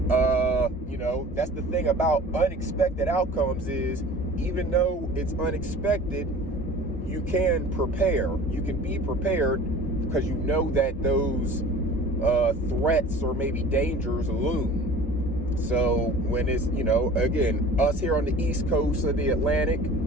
that's the thing about unexpected outcomes is even though it's unexpected, you can prepare. You can be prepared because you know that those threats or maybe dangers loom. So when it's, again, us here on the East Coast of the Atlantic,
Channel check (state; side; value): normal; both; correlation 0.43